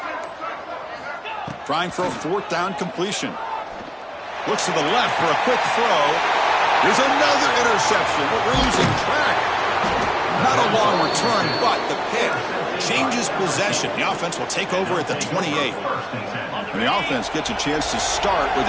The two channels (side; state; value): both; identical; correlation 1.00